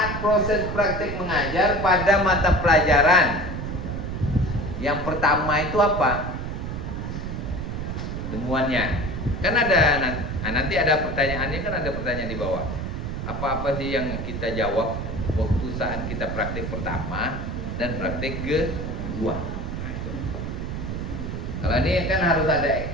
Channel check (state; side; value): noise; right; rumble, 4 dB below the sound